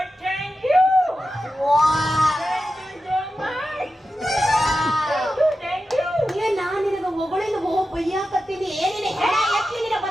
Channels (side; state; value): both; normal; correlation 0.92